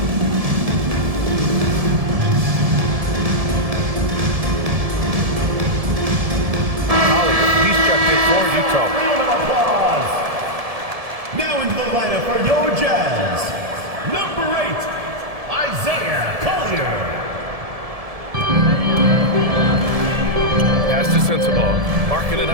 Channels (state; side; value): late; left; 1.7 ms